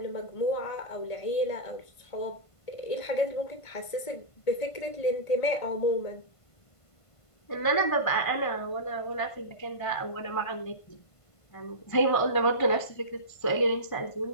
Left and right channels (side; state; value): right; late; 1.5 ms